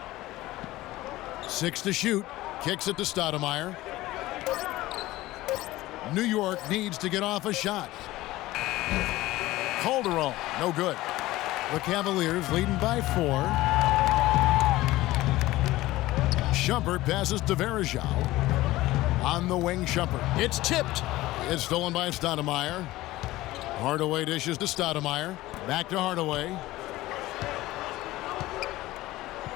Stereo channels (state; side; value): quieter; right; 17.5 dB